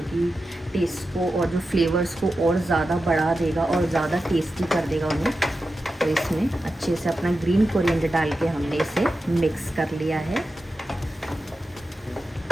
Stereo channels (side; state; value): both; normal; correlation 0.91